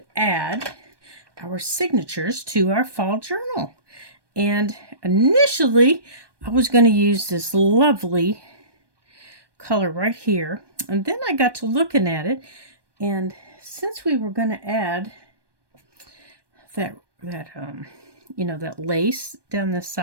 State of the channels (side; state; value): left; late; 1.2 ms